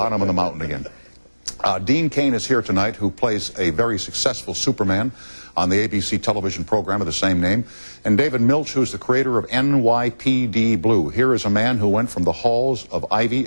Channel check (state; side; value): inverted; both; correlation -1.00